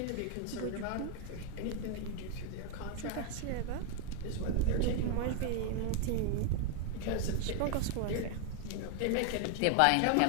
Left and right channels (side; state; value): both; different; correlation 0.00